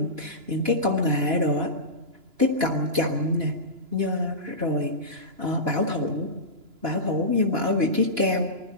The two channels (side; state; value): left; late; 2.9 ms